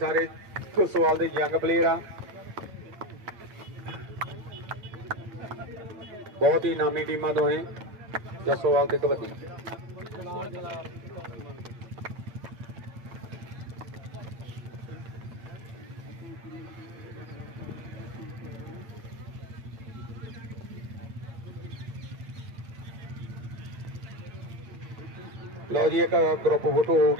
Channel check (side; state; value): left; late; 8.9 ms